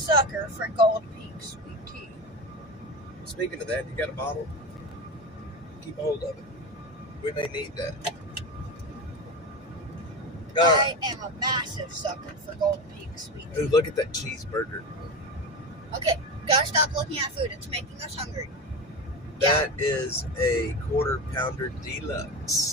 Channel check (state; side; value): normal; both; correlation 0.22